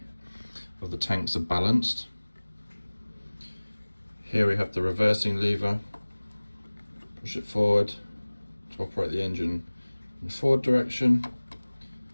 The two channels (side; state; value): both; inverted; correlation -1.00